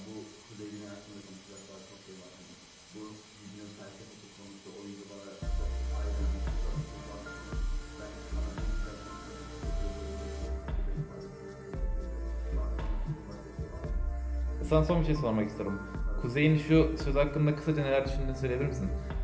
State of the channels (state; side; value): identical; both; correlation 1.00